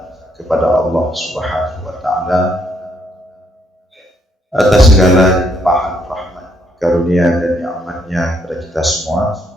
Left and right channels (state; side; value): normal; both; correlation 0.72